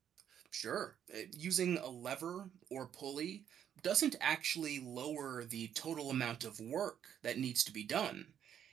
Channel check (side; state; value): left; quieter; 9.3 dB